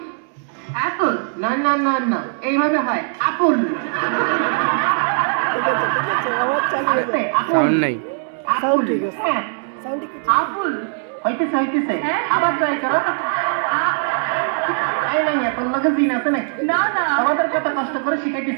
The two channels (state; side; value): silent; left; 66 dB below the other